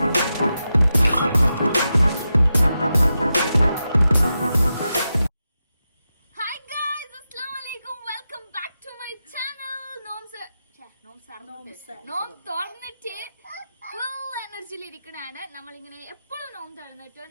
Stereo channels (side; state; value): both; inverted; correlation -0.90